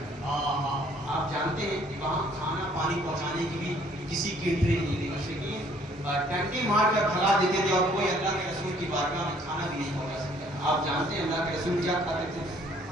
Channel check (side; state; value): both; normal; correlation 0.61